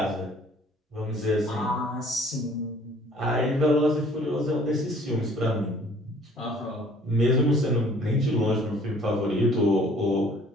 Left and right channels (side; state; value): both; normal; correlation 0.55